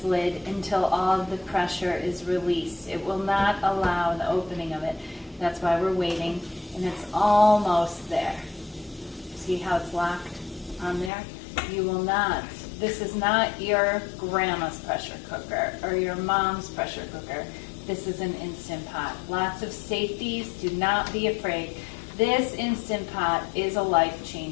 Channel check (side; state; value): right; drops out; at 11.1 s